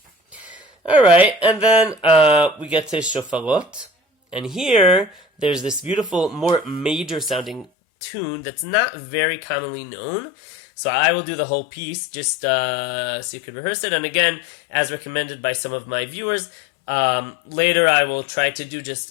Alright, and then we get to Shofarot. And here, there's this beautiful, more major sounding tune that's not very commonly known. So I will do the whole piece just so you could rehearse it. And again, as recommended by some of my viewers, Later I will try to do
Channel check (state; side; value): drops out; right; at 7.7 s